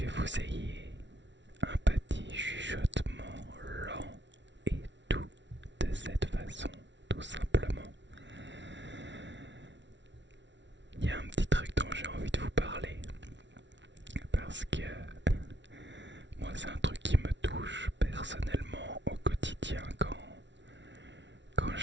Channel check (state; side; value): late; left; 0.52 ms